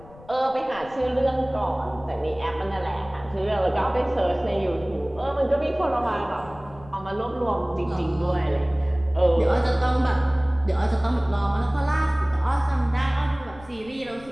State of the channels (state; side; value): noise; left; rumble, 21 dB below the sound